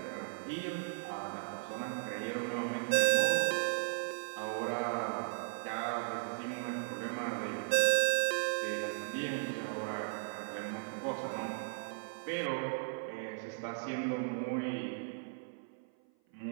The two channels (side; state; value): left; silent; 53 dB below the other